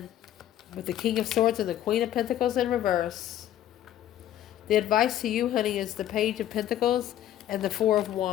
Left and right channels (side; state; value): right; quieter; 11.9 dB